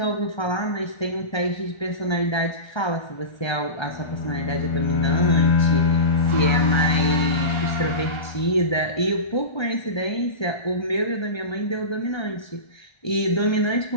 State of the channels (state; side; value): late; right; 1.3 ms